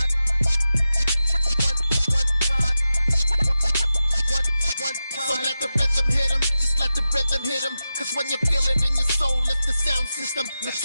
So let the rhythm hit him, just let the rhythm hit him. Cause when you feel it in your soul, lift the sound system. Let's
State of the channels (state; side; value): inverted; both; correlation -0.93